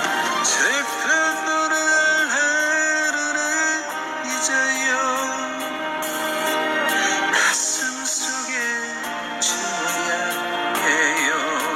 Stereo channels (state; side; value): identical; both; correlation 1.00